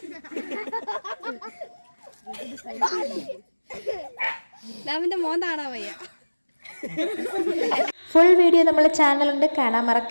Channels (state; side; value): inverted; both; correlation -1.00